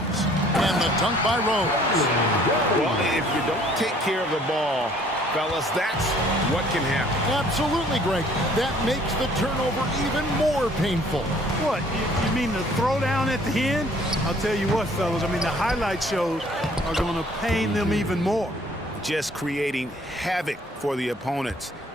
the dunk by Rose. Well, if you don't take care of the ball, fellas, that's what can happen. Absolutely, Greg. That makes the turnover even more painful. What, you mean the throwdown at the end? I'll tell you what, fellas, I mean, the highlight shows are going to pain them even more. Just creating havoc for the opponents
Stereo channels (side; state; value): both; normal; correlation 0.58